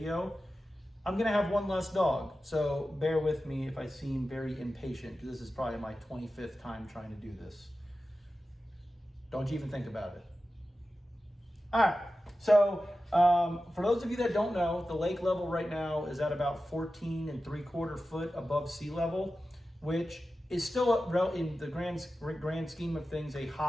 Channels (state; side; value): normal; both; correlation 0.94